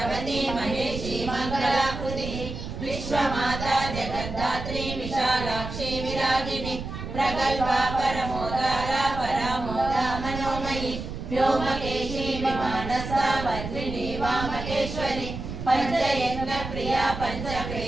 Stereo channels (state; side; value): noise; right; rumble, 7 dB below the sound